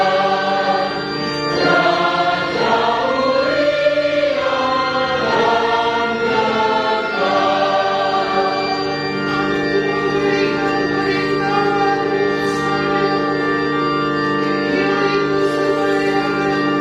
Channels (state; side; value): identical; both; correlation 1.00